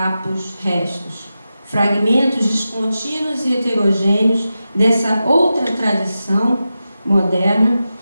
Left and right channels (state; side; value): inverted; both; correlation -0.92